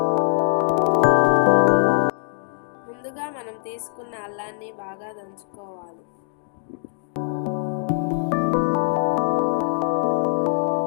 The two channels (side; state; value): right; silent; digital silence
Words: ముందుగా మనం తీసుకున్న అల్లాన్ని బాగా దంచుకోవాలి.